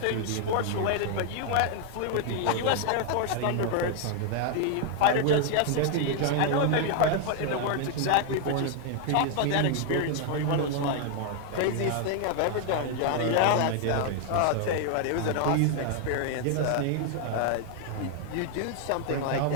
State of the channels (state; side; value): different; both; correlation 0.00